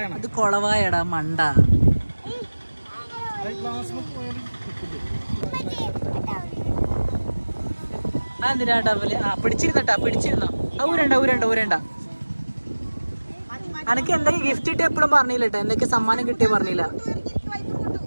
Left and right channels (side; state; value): both; inverted; correlation -1.00